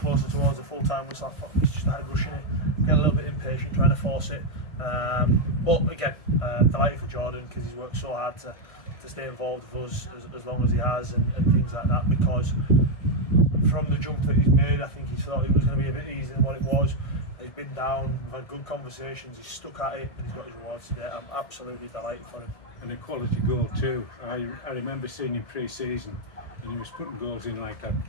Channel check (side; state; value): right; late; 1.6 ms